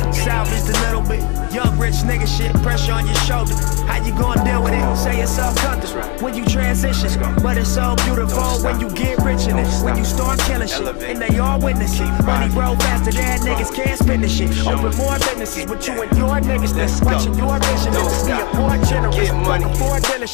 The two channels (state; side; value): quieter; right; 32.4 dB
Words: Salvage a little bit, young rich nigga shit, pressure on your shoulder. How you gonna deal with it? Say it's all comfortable when you transition, but it's so beautiful when you get rich in it. When you start killing shit, and they all witness it. Money roll faster than niggas can't spend the shit. Open more businesses with you and your niggas that's watching your vision. Be a more generous, fucking for a